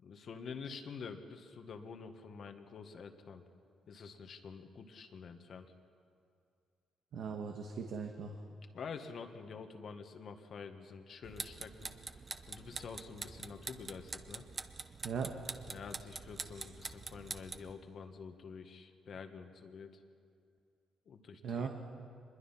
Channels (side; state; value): both; normal; correlation 0.74